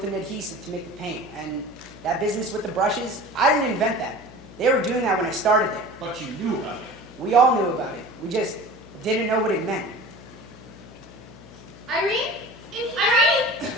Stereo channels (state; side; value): noise; left; hum, 19 dB below the sound